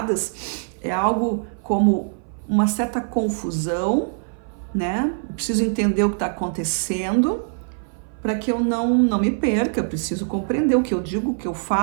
é algo como uma certa confusão, né? Eu preciso entender o que está acontecendo para que eu não me perca. Eu preciso compreender o que eu digo, o que eu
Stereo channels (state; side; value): silent; left; 58 dB below the other